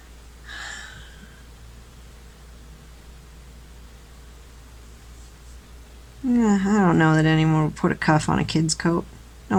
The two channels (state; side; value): identical; both; correlation 1.00